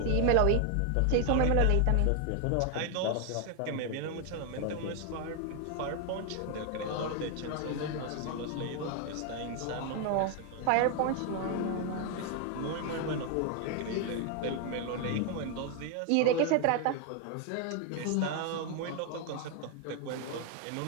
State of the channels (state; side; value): different; both; correlation 0.01